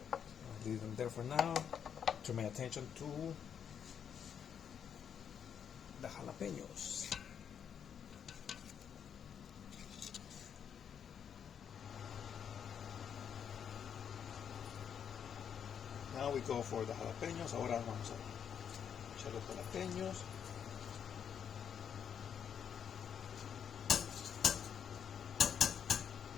Leave them there for now. Turn my attention to the jalapeños. Now we go for the jalapeños. Ahora vamos a echar los jalapeños.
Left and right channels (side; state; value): right; quieter; 8.0 dB